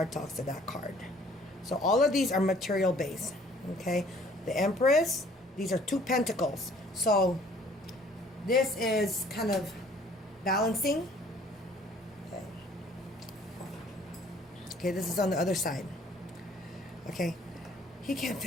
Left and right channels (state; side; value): normal; both; correlation 0.56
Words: talks to that card. So all of these are material based. Okay. The Empress, these are 2 pentacles. So this is kind of balancing. Okay. Okay, this is on the other side. Okay. He can't